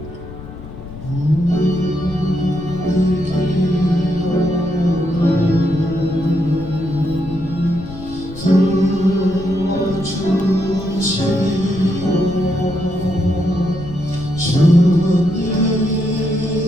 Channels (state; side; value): noise; left; rumble, 13 dB below the sound